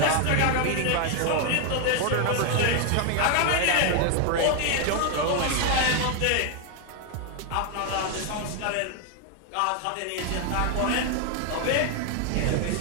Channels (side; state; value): both; different; correlation 0.01